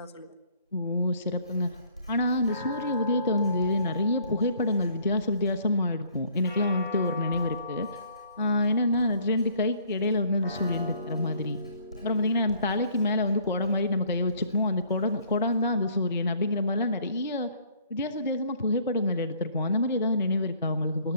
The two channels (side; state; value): both; inverted; correlation -0.60